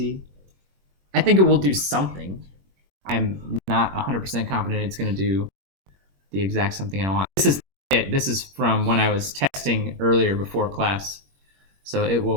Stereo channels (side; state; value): left; late; 21 ms